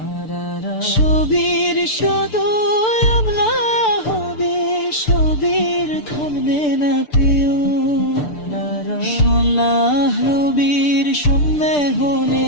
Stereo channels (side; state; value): right; late; 6.8 ms